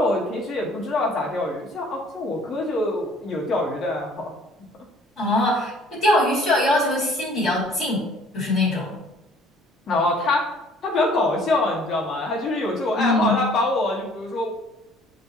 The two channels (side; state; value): both; normal; correlation 0.56